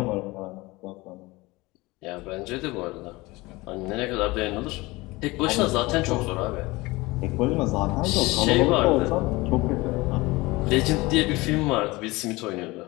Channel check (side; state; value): right; quieter; 21.8 dB